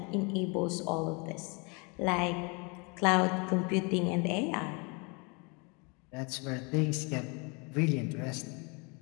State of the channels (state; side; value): quieter; right; 31.4 dB